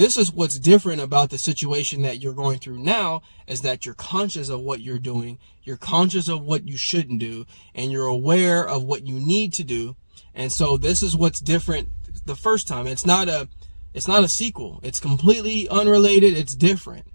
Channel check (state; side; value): inverted; both; correlation -1.00